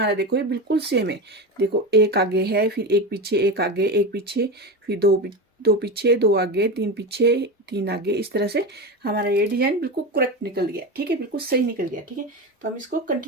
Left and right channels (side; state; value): both; normal; correlation 0.21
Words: देखो ये बिल्कुल सेम है। देखो 1 आगे है, फिर 1 पीछे 1 आगे, 1 पीछे, फिर 2 पीछे 2 आगे, 3 पीछे 3 आगे। इस तरह से हमारा ये डिजाइन बिल्कुल करेक्ट निकल गया। ठीक है, बिल्कुल सही निकल गया। ठीक है, तो हम इसको